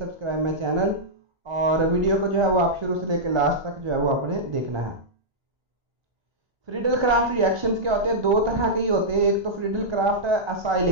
माई चैनल, और वीडियो को जो है वो आप शुरू से लेकर लास्ट तक जो है वो आपने देखना है। फ्रीडल क्राफ्ट रिएक्शंस क्या होते हैं? दो तरह के ही होते हैं। एक तो Friedel craft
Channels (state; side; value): late; left; 1.3 ms